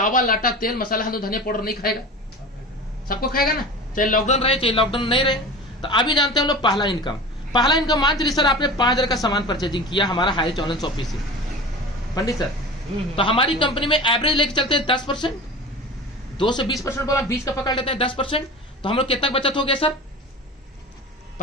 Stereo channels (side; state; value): both; normal; correlation 0.34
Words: आटा, तेल, मसाला, हल्दी, धनिया पाउडर नहीं खाएगा, सबको खाएगा ना, चाहे लॉकडाउन रहे चाहे लॉकडाउन नहीं रहे। तो अभी जानते हैं हम लोग पहला इनकम मान चलिए सर आपने 5000 का सामान परचेजिंग किया हमारा हाईरिच ऑनलाइन शॉपिंग से पंडित सर, तो हमारी कंपनी में एवरेज लेके चलते हैं 10%, 2 से 20% बोला, 20 का पकड़ लेते हैं 10%, तो हम लोग कितना बचत हो गया सर,